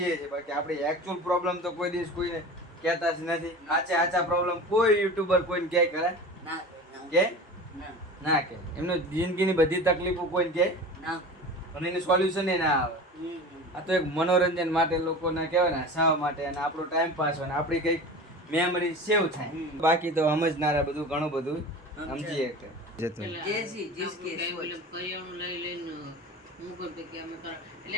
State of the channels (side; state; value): both; normal; correlation 0.34